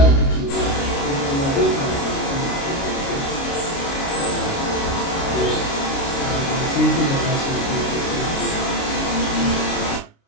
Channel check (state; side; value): late; right; 29 ms